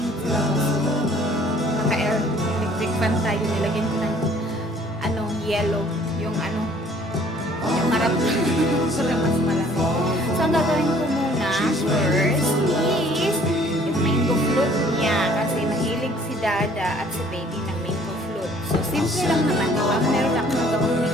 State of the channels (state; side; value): normal; both; correlation 0.57